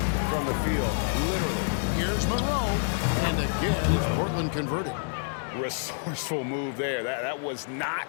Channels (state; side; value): silent; right; digital silence